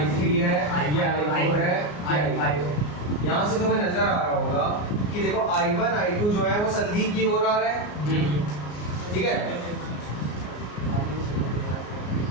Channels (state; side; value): late; right; 33 ms